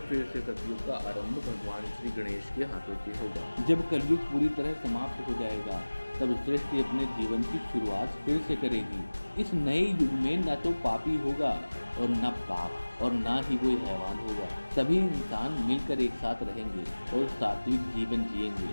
से सतयुग का आरंभ भगवान श्री गणेश के हाथों से होगा। जब कलयुग पूरी तरह समाप्त हो जाएगा, तब सृष्टि अपने जीवन की शुरुआत फिर से करेगी। इस नए युग में न तो पापी होगा और न पाप और न ही कोई हैवान होगा। सभी इंसान मिलकर एक साथ रहेंगे और सात्विक जीवन जिएंगे,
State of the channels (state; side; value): inverted; both; correlation -1.00